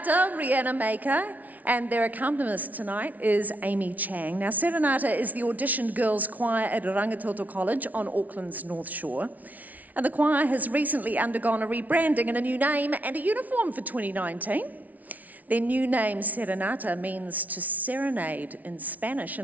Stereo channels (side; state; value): left; late; 0.074 ms